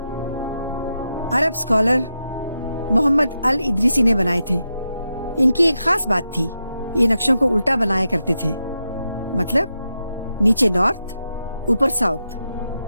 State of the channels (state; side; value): inverted; both; correlation -0.87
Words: अरब स्कॉलर मोहम्मद अल इदरीसी ने बनाए थे। इनकी एक खास बात थी, ये नक्शों को उल्टा बनाया करते थे, मतलब नीचे नॉर्थ ऊपर साउथ।